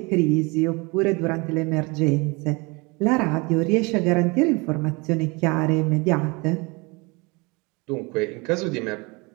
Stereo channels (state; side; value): quieter; left; 27.3 dB